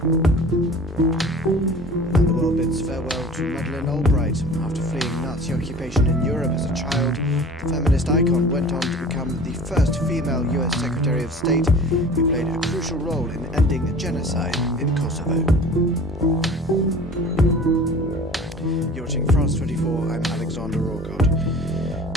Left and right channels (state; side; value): normal; both; correlation 0.43